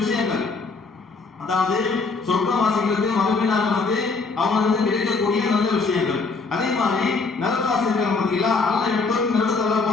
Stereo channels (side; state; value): right; quieter; 4.2 dB